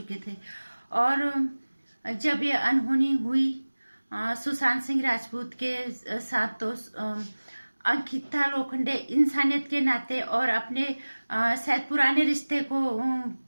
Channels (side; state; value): both; inverted; correlation -1.00